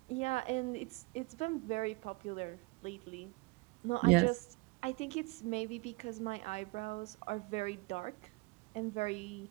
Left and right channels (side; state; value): left; quieter; 26.7 dB